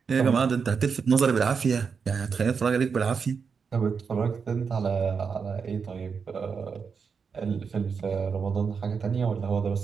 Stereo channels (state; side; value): quieter; left; 5.8 dB